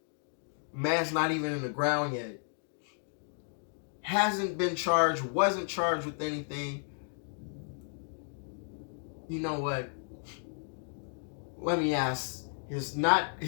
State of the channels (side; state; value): right; silent; 56 dB below the other